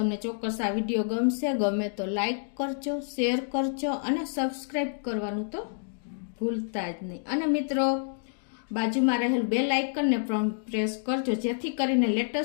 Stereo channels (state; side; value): silent; right; digital silence